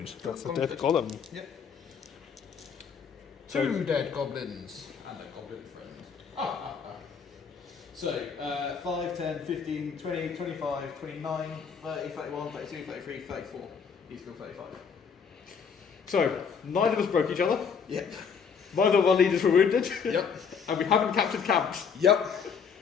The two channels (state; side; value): quieter; right; 6.4 dB